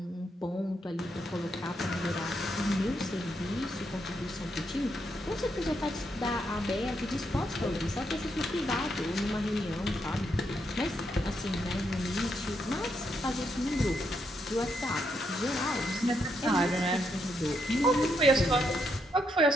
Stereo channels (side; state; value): both; normal; correlation 0.79